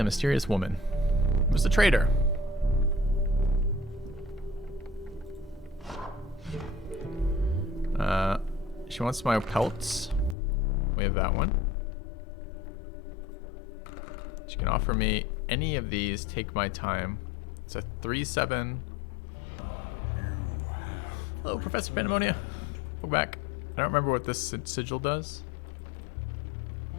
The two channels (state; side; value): drops out; right; at 10.4 s